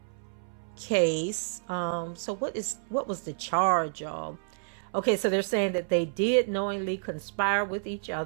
case. So what was the charge, y'all? Okay, so they're saying that they did knowingly conspire with each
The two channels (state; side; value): silent; left; 58 dB below the other